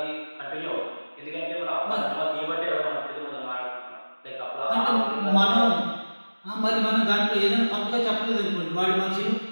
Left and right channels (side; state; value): both; inverted; correlation -1.00